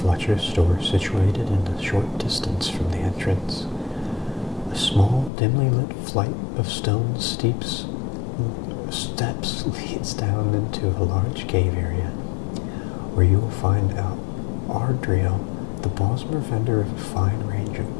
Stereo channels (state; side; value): drops out; right; at 5.3 s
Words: store situated in a short distance from the entrance. A small, dimly lit flight of stone steps leads down into a large cave area, where you will find out Ardriel, the Bosmer vendor of a fine range of